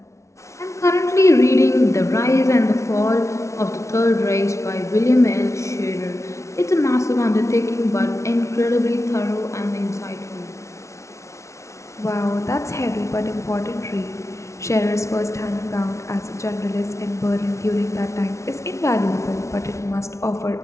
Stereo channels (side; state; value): right; late; 0.14 ms